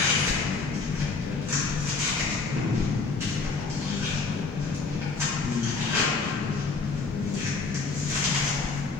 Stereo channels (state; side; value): quieter; right; 4.3 dB